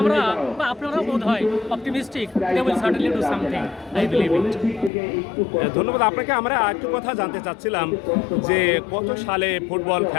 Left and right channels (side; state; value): right; drops out; at 4.9 s